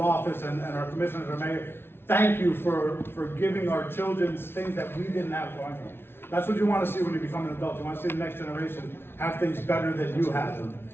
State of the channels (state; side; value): late; right; 0.11 ms